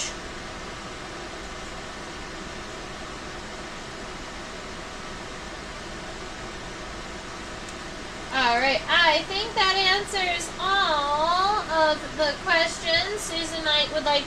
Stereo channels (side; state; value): both; identical; correlation 1.00